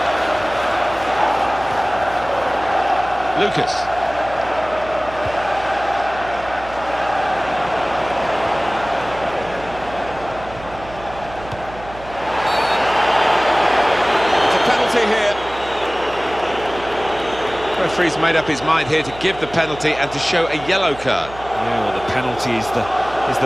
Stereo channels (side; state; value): right; noise; hum, 16 dB below the sound